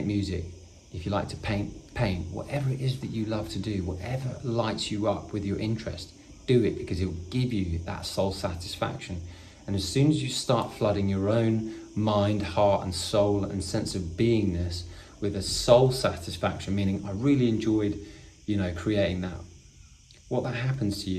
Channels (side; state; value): both; identical; correlation 1.00